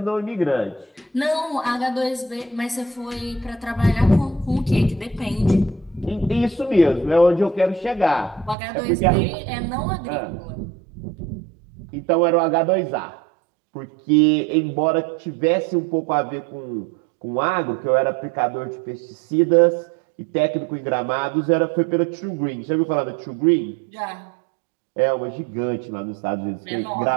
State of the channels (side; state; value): left; drops out; at 8.6 s